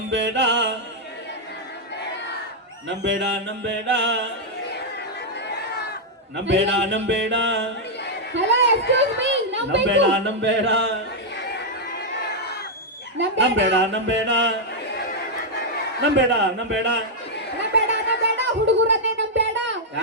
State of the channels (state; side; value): normal; both; correlation -0.03